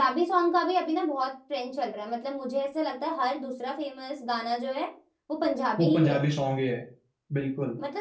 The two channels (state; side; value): identical; both; correlation 1.00